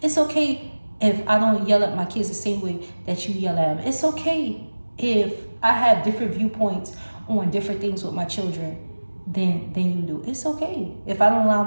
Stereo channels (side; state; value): both; inverted; correlation -1.00